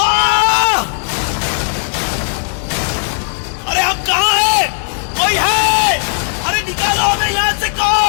अरे हम कहाँ हैं? कोई है? अरे निकालो हमें यहाँ से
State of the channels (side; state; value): right; silent; digital silence